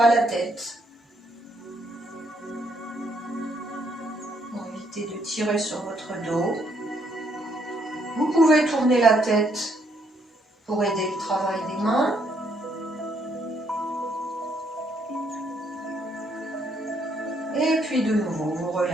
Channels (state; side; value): normal; both; correlation 0.71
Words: la tête. Pour éviter de tirer sur votre dos. Vous pouvez tourner la tête pour aider le travail des mains. Et puis de nouveau, vous